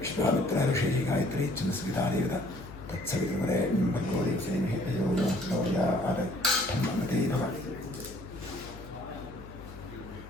विश्वामित्र ऋषि गायत्री चंद्रस्मिता देवता तत्सवितुर्वरे भर्गो देवसेनहि तयो यो गौर्या आदमते भव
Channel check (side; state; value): left; noise; hum, 15 dB below the sound